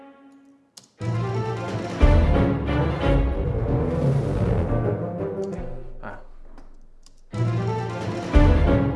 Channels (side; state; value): both; identical; correlation 1.00